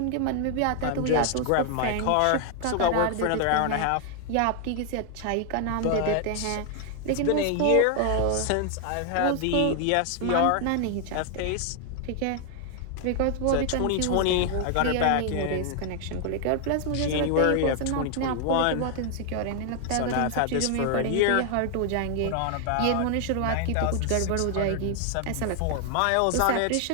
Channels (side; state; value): both; different; correlation 0.00